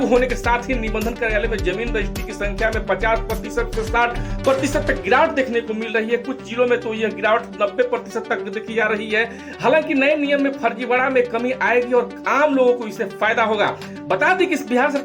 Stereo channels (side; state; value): both; identical; correlation 1.00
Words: होने के साथ ही निबंधन कार्यालय में जमीन रजिस्ट्री की संख्या में 50% से 60% तक गिरावट देखने को मिल रही है। कुछ जिलों में तो यह गिरावट 90% तक देखी जा रही है। हालांकि नए नियम में फर्जीवाड़ा में कमी आएगी और आम लोगों को इससे फायदा होगा। बता दें कि बिहार